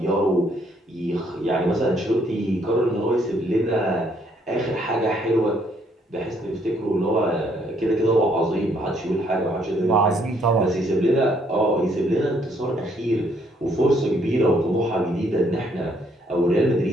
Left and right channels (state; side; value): normal; both; correlation 0.68